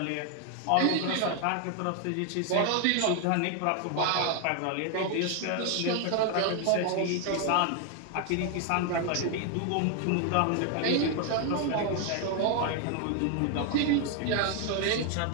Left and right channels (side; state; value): both; different; correlation 0.01